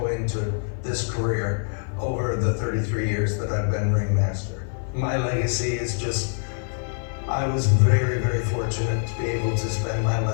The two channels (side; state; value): right; silent; 57 dB below the other